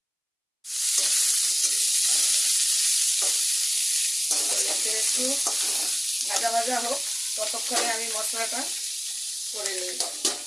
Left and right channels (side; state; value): both; identical; correlation 1.00